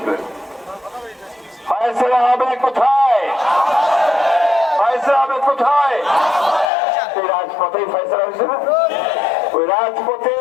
ফয়সালা হবে কোথায়, ফয়সালা হবে কোথায়? সেই রাজপথেই ফয়সালা হয়েছে না? ওই রাজপথে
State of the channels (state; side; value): drops out; right; at 6.7 s